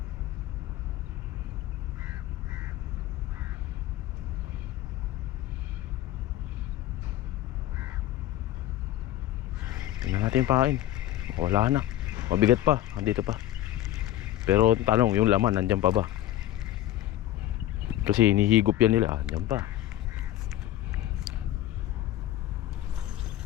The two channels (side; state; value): right; quieter; 13.6 dB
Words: Tingnan natin yung pain. Wala na. Mabigat pa, andito pa. Pero tanong, yung laman nandyan pa ba? Kasi hinihigop yan nila, andyan pa.